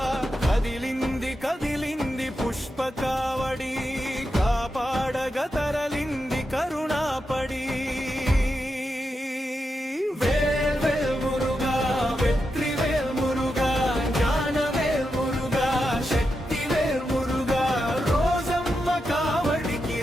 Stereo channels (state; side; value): normal; both; correlation 0.87